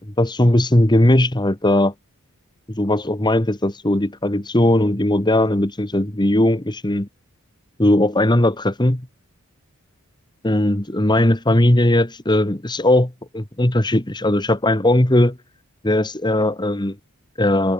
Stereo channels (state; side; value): normal; both; correlation 0.79